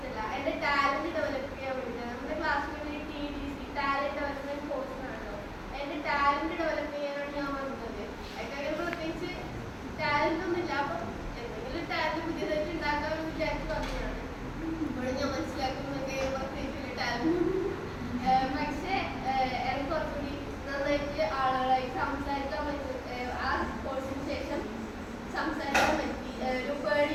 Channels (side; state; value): both; identical; correlation 1.00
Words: എൻ്റെ ടാലൻറ്റ് ഡെവലപ്പ് ചെയ്യാൻ വേണ്ടിയിട്ടാണ്. നമ്മുടെ ക്ലാസ്സിൽ TDC ടാലൻറ്റ് ഡെവലപ്മെൻറ്റ് കോഴ്സാണല്ലോ. എൻ്റെ ടാലൻറ്റ് ഡെവലപ്പ് ചെയ്യാനാണ് ഞാൻ വന്നത്. അതിന് പ്രത്യേകിച്ച് ടാലൻ്റ് ഒന്നുമില്ല, അപ്പം എന്തെങ്കിലും ടാലൻറ്റ് പുതിയതായിട്ട് ഉണ്ടാക്കാമെന്ന് വിചാരിച്ച് പറഞ്ഞതാണ്. ഇപ്പോൾ ഞാൻ മനസ്സിലാക്കുന്നതൊക്കെ പ്രത്യേകിച്ച് ടാലൻറ്റ്. പക്ഷേ എനിക്ക് കുറച്ചുകൂടി നന്നായിട്ട് ആളുകളായി സംസാരിക്കാൻ പറ്റും. ആ കോഴ്സിന് ശേഷം സംസാരിക്കാൻ പറ്റി, ഒരു